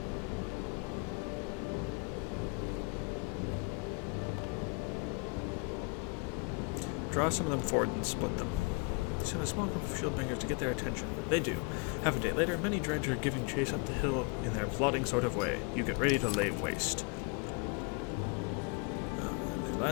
Draw some of them forward and split them. Send a small group of shieldbangers to get their attention. They do. Half a day later, many dredge are giving chase up the hill in their plodding sort of way. You get ready to lay waste. They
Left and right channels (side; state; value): right; quieter; 31.1 dB